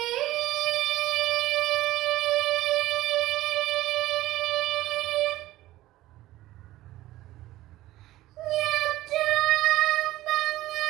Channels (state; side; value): quieter; left; 16.1 dB